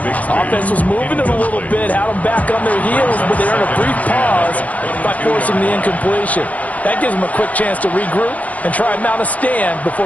Offense was moving it a little bit, had them back on their heels, but they earned a brief pause by forcing the incompletion. That gives them a quick chance to regroup and try and mount a stand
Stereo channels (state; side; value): late; right; 0.072 ms